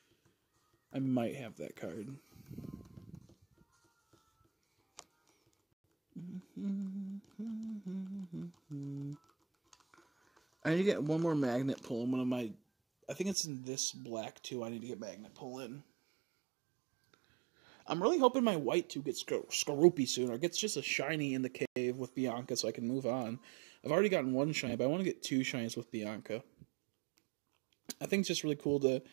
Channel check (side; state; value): left; drops out; at 13.4 s